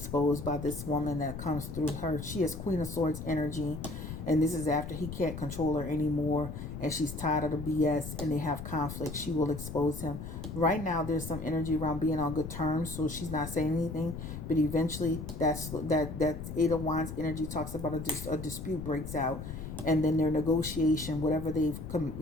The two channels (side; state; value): left; noise; rumble, 8 dB below the sound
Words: by this woman that comes through her. She has Queen of Swords energy, and this is after he can't control her anymore, and she's tired of the BS, and they have conflict. She will expose him. Right now, there's some energy around being on good terms, so she's not saying anything, but eventually that Eight of Wands energy talks about a dispute breaks out, and then their negotiation, whatever